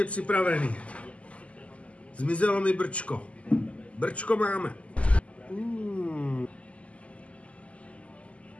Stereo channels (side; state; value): right; late; 0.063 ms